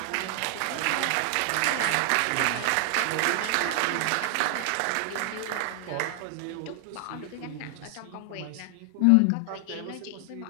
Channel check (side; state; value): both; different; correlation 0.00